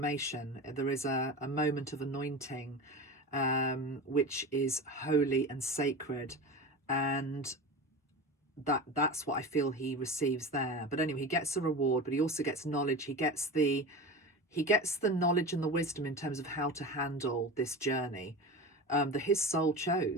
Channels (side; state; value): both; normal; correlation 0.29